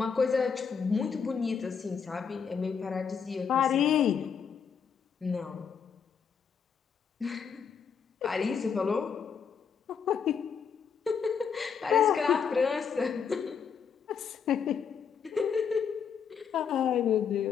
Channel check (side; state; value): right; quieter; 6.7 dB